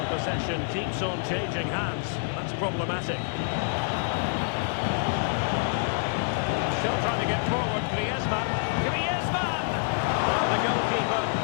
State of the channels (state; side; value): silent; right; digital silence